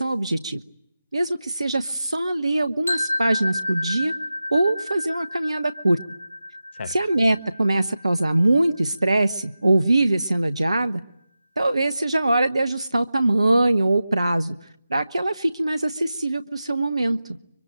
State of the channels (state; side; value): inverted; both; correlation -0.93